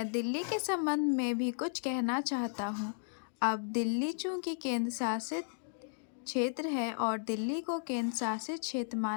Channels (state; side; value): silent; right; digital silence